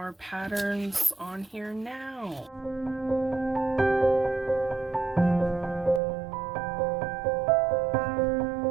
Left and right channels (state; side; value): drops out; left; at 6.0 s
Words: patterns on here now.